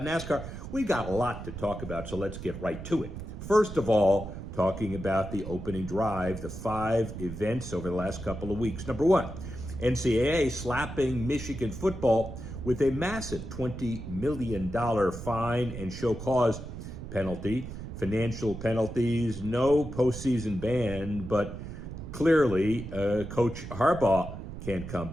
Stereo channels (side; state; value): right; noise; rumble, 9 dB below the sound